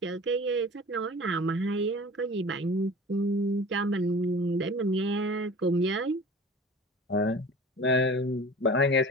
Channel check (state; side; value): normal; both; correlation 0.40